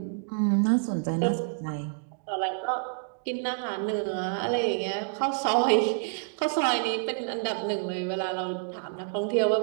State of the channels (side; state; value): left; silent; digital silence